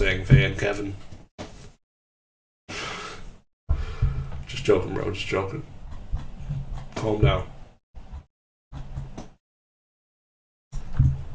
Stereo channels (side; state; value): both; identical; correlation 1.00